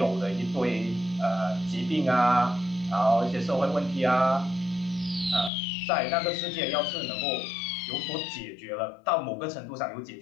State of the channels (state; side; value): drops out; right; at 5.5 s